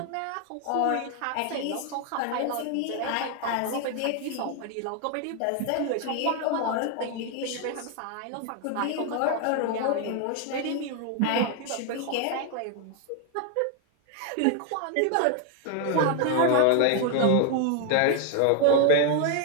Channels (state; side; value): different; both; correlation 0.00